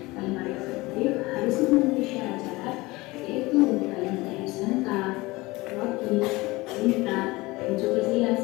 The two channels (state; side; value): quieter; right; 21.6 dB